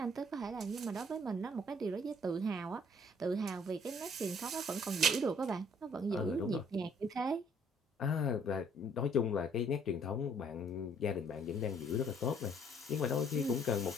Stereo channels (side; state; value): both; normal; correlation 0.61